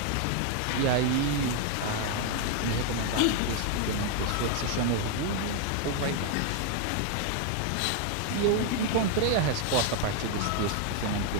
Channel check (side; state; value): both; different; correlation 0.00